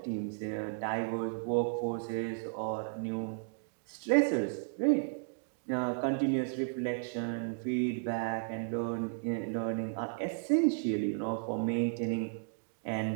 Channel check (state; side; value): silent; left; digital silence